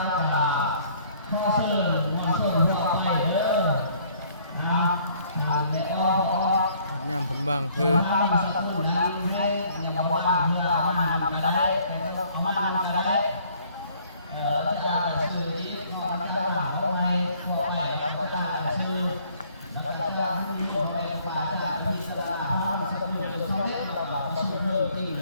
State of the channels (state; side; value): inverted; both; correlation -0.60